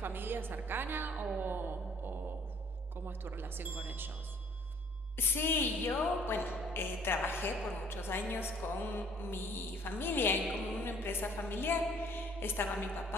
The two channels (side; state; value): both; normal; correlation 0.57